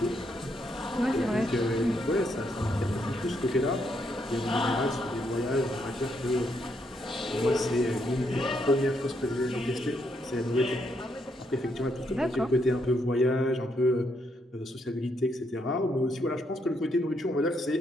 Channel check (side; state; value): both; normal; correlation 0.76